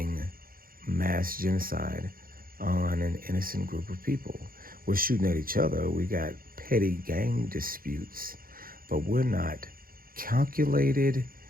mass genocide on an innocent group of people. We're shooting at each other. We got petty gang disputes, but we're not calculated,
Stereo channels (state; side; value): late; left; 0.42 ms